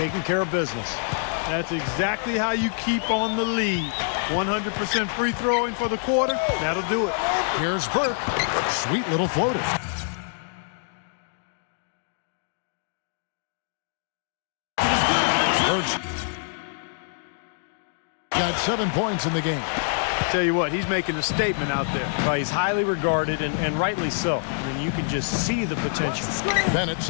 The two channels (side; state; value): right; silent; digital silence